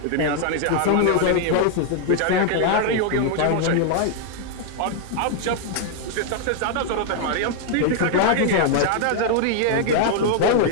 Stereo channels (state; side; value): different; both; correlation 0.00